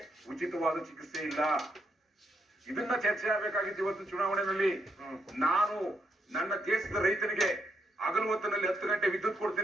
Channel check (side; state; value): both; normal; correlation 0.78